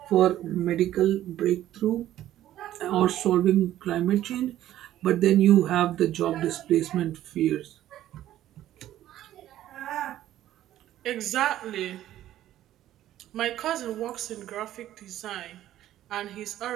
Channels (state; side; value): quieter; left; 13.0 dB